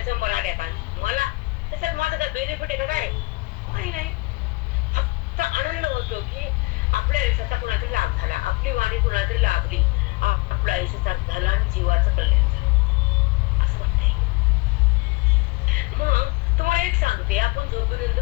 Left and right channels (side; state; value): right; quieter; 24.1 dB